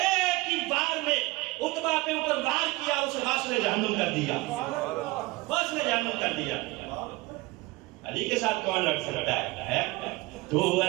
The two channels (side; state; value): left; quieter; 21.9 dB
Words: ہی بار میں عتبہ پہ اوپر وار کیا، اسے واصل جہنم کر دیا، واصل جہنم کر دیا. علی کے ساتھ کون لڑ سکتا ہے؟ تو